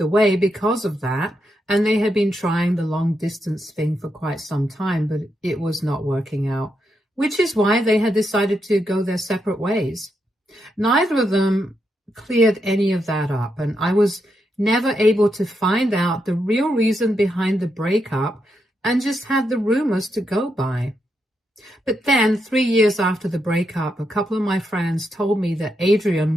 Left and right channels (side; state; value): both; normal; correlation 0.82